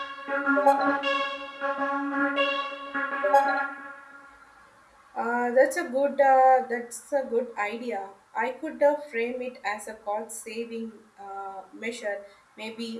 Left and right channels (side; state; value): both; identical; correlation 1.00